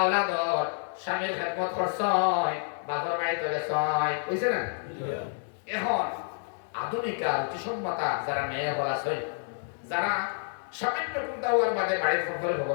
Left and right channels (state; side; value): silent; right; 58 dB below the other